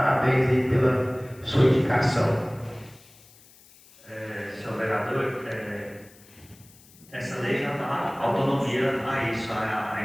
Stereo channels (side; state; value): left; noise; hiss, 25 dB below the sound